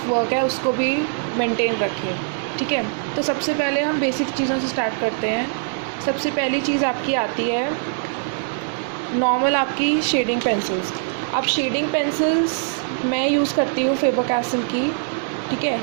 वर्क है उसको भी मेंटेन रखे। ठीक है, तो सबसे पहले हम बेसिक चीज़ों से स्टार्ट करते हैं। सबसे पहली चीज़ आपकी आती है नॉर्मल आपकी शेडिंग पेंसिल्स। अब शेडिंग पेंसिल्स मैं यूज़ करती हूँ फेबर-कास्टिल की, ठीक है।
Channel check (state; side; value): silent; left; 55 dB below the other